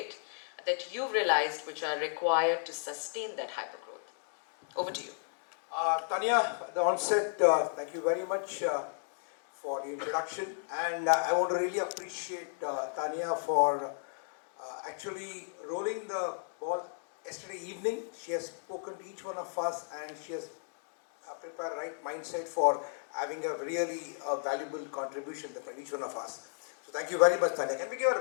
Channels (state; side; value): silent; right; digital silence